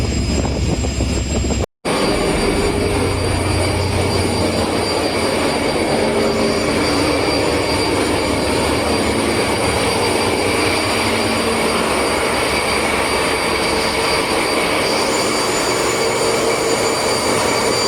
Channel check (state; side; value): identical; both; correlation 1.00